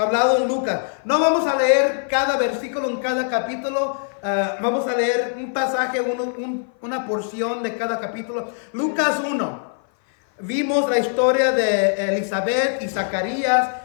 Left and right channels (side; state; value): right; silent; 57 dB below the other